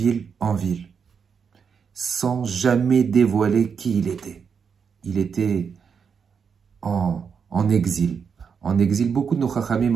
en ville, sans jamais dévoiler qui il était. Il était en exil. En exil, beaucoup de nos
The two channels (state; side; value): quieter; left; 6.4 dB